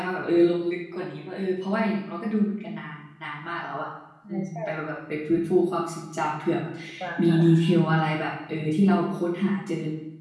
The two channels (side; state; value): both; identical; correlation 1.00